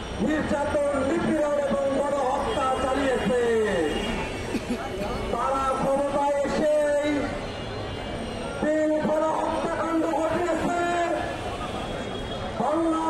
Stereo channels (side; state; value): both; identical; correlation 1.00